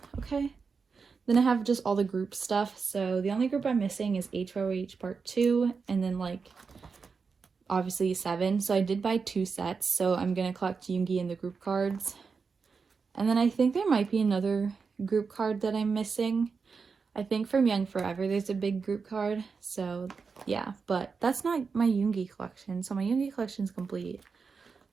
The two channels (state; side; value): quieter; left; 5.2 dB